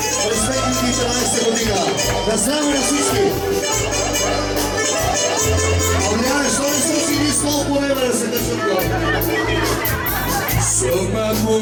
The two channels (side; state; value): both; identical; correlation 1.00